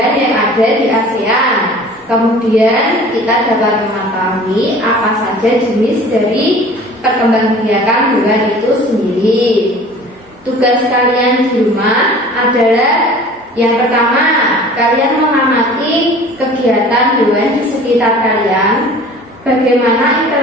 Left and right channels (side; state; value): both; normal; correlation 0.45